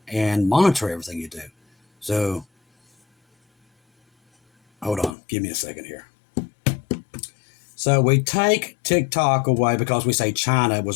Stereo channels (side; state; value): right; drops out; at 5.2 s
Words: and monitor everything you do. So, hold on. Give me a second here. So we take TikTok away because we say China